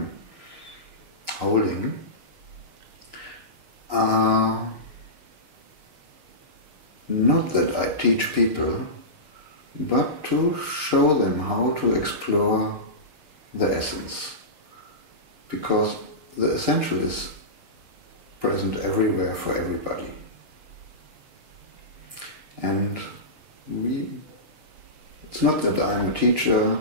holding, are not that I teach people, but to show them how to explore the essence. Because the essential is present everywhere for everybody. And it's not that I'm a teacher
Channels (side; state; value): left; late; 6.5 ms